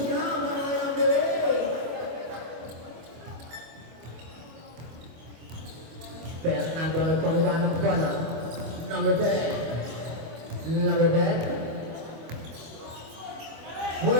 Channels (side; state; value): left; late; 25 ms